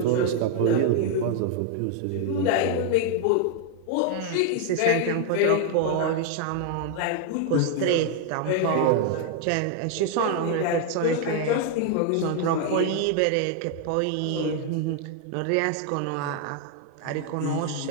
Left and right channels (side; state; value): both; different; correlation 0.00